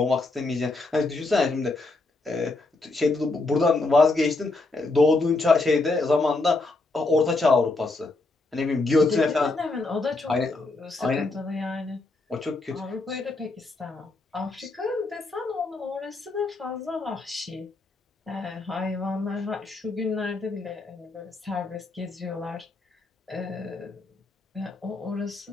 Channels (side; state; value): right; quieter; 3.3 dB